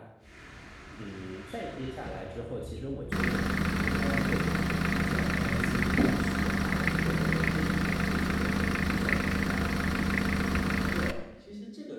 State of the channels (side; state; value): both; identical; correlation 1.00